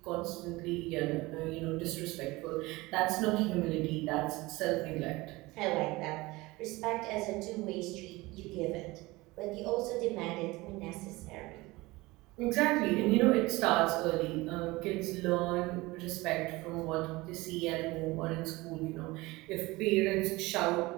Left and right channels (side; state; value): left; quieter; 21.3 dB